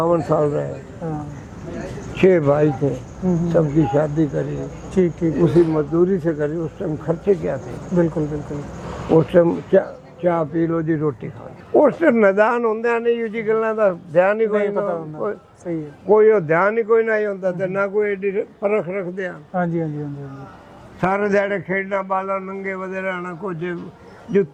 साल रहे। 6 भाई थे सबकी शादी करी। ठीक ठीक। उसी मजदूरी से करी। उस टाइम खर्चे क्या थे। बिल्कुल बिल्कुल। उस टाइम चाह पी लो जी रोटी खा उस टाइम मैदान होंगे नहीं जी गल्लां दा ध्यान ही कोई सही है कोई ध्यान ही कोई नहीं होता तो ना कोई एडी परख रखते हैं। हाँ जी हाँ जी हाँ जी। सारे दिहाड़े खेडना बाला नंगे वधे रहना कुछ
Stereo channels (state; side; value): identical; both; correlation 1.00